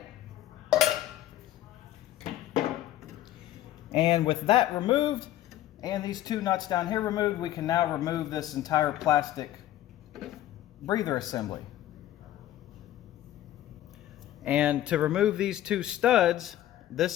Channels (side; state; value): right; quieter; 13.3 dB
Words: And with that removed, and these two nuts down here removed, we can now remove this entire plastic breather assembly. And to remove these two studs,